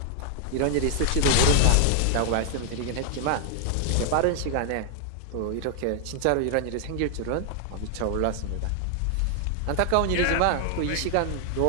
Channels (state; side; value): different; both; correlation 0.00